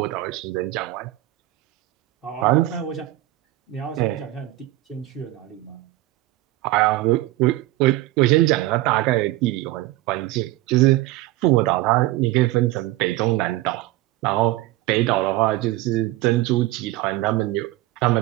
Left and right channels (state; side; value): quieter; left; 16.9 dB